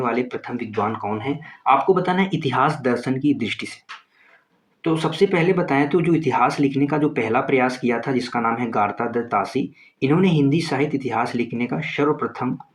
प्रथम विद्वान कौन है? आपको बताना है इतिहास दर्शन की दृष्टि से। तो सबसे पहले बताएं तो जो इतिहास लिखने का जो पहला प्रयास किया था, जिसका नाम है गार्ता दत्त तासी, इन्होंने हिंदी साहित्य इतिहास लिखने का सर्वप्रथम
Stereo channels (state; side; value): identical; both; correlation 1.00